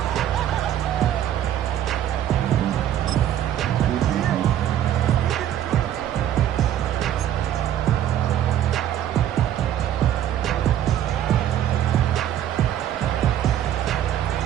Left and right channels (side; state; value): left; quieter; 11.1 dB